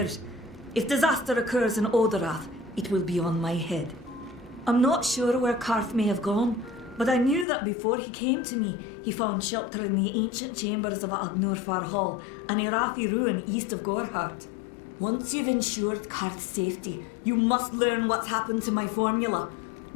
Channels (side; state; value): right; drops out; at 7.5 s